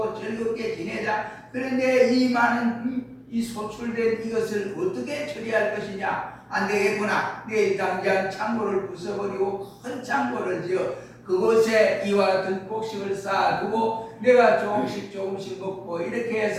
즐겁게 지내자. 그런데 이 많은 이 소출된 이것을 어떻게 처리할 것이냐? 안 되겠구나. 내일 당장 창고를 부숴버리고 큰 창고를 지어 그곳에 이와 같은 곡식을 쌓아두고 내가 조금씩 먹고 이렇게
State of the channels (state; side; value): identical; both; correlation 1.00